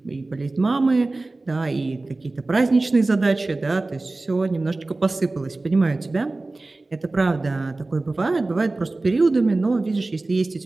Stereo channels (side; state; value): left; quieter; 3.2 dB